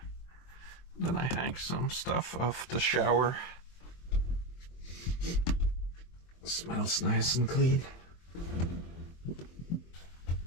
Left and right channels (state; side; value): late; right; 23 ms